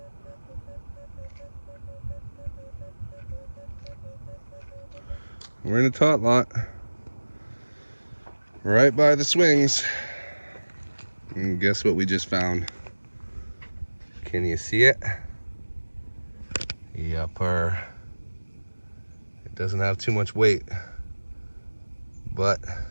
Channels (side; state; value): both; inverted; correlation -1.00